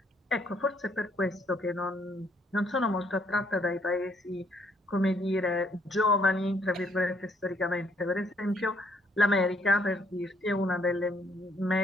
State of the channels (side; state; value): both; normal; correlation 0.68